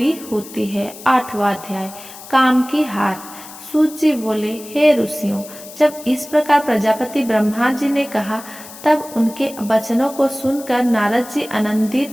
होती है। 8वां अध्याय, काम की हार। सूत जी बोले, हे ऋषियों, जब इस प्रकार प्रजापति ब्रह्मा जी ने कहा तब उनके वचनों को सुनकर नारद जी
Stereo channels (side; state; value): left; noise; hiss, 16 dB below the sound